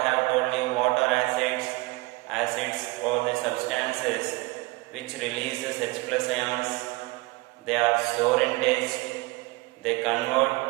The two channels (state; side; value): quieter; left; 22.8 dB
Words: have told you, what are acids? Acids are the substances which releases H plus ions. They are sour in taste. They convert